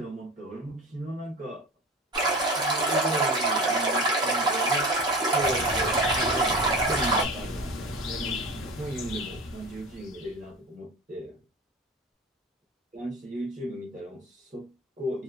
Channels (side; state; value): both; normal; correlation 0.31